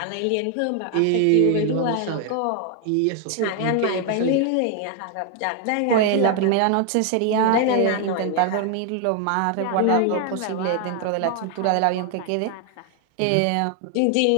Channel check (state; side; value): different; both; correlation 0.00